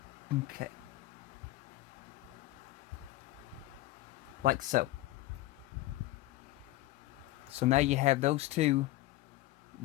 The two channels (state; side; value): quieter; right; 17.1 dB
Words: Okay. Like so. So now you have those two